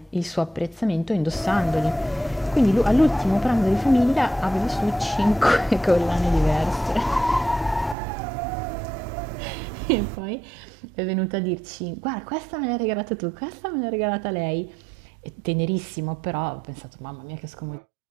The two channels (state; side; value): drops out; left; at 8.0 s